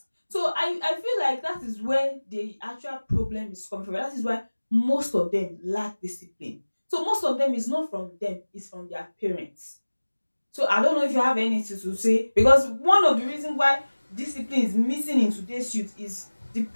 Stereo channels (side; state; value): both; inverted; correlation -1.00